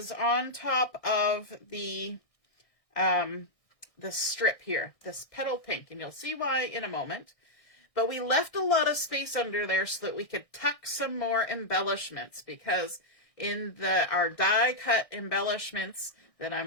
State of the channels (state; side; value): late; right; 1.6 ms